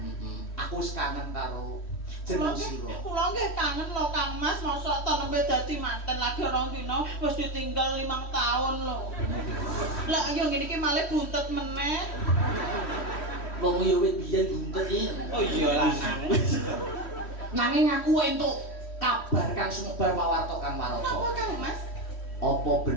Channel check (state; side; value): late; right; 3.1 ms